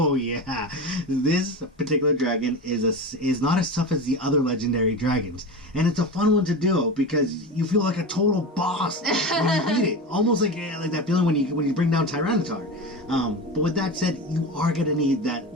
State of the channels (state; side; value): normal; both; correlation 0.25